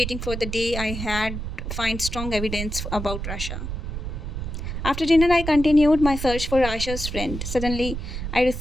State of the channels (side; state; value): right; noise; rumble, 5 dB below the sound